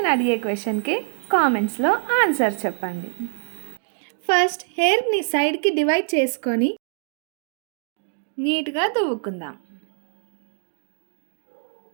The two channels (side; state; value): left; silent; digital silence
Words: అడిగే క్వశ్చన్కి కామెంట్స్లో ఆన్సర్ చెప్పండి. ఫస్ట్ హెయిర్ని సైడ్కి డివైడ్ చేసుకొని నీట్గా దువ్వుకుందాం.